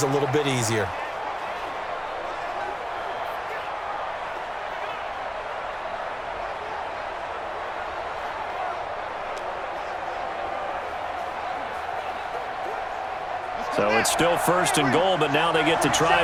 a little bit easier. So it's still 1st and goal, but now they get to try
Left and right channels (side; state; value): both; identical; correlation 1.00